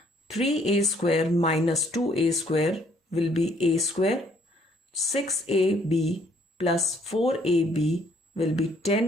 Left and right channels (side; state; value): both; normal; correlation 0.65